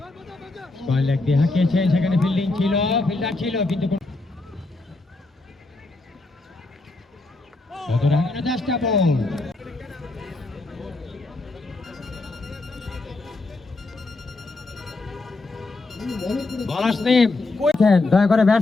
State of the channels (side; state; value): right; quieter; 3.2 dB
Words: লেগ দিয়ে হাঁকিয়েছেন, সেখানে ফিল্ডিং ছিল, ফিল্ডার ছিল, কিন্তু চেষ্টা বল। দয়া করে